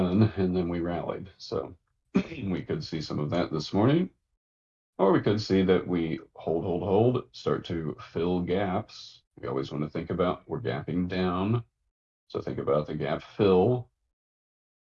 and then we rallied. So we could see some of that this morning. Or we could see that we hold, start to fill gaps. We always want to think about we're gapping down. So think about the gap fill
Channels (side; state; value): both; identical; correlation 1.00